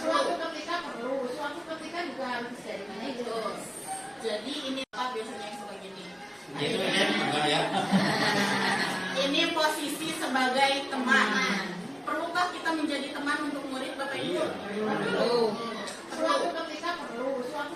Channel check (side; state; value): both; identical; correlation 1.00